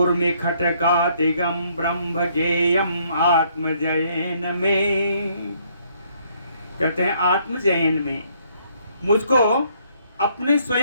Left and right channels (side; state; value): both; inverted; correlation -0.67